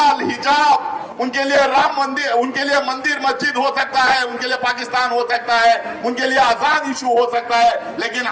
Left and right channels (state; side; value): identical; both; correlation 1.00